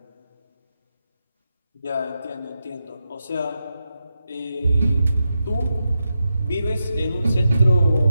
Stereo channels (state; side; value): inverted; both; correlation -0.88